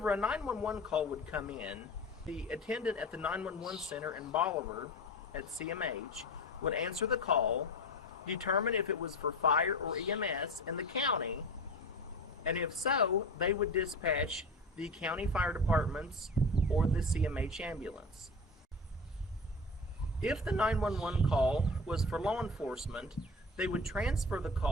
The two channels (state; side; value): normal; both; correlation 0.30